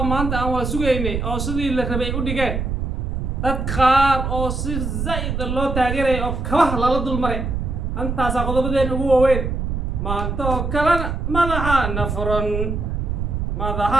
ما أنت أو سويني أو سدي اللي ربي وديكان تدخار أو صير زايد الله تاجره أو كواه لا لدول مري أنت ساقط بدين هو وين ما أنت كلام ماذا نفرن ماذا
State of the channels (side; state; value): right; noise; rumble, 2 dB below the sound